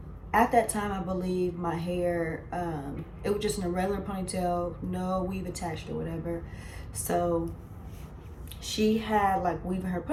at that time, I believe my hair, it was just in a regular ponytail, no weave attached or whatever. So she had like weave in her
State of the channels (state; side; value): identical; both; correlation 1.00